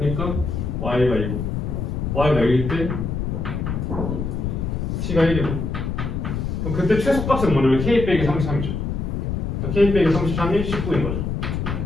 y가 2고 y가 1일 때 t가 1이고 그럼 그때 최소값은 뭐냐면 k 빼기 33이죠. k 빼기 33이 19인 거죠.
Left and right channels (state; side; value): noise; left; rumble, 2 dB below the sound